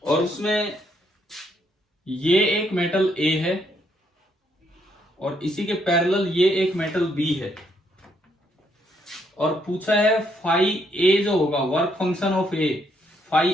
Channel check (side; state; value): both; normal; correlation 0.73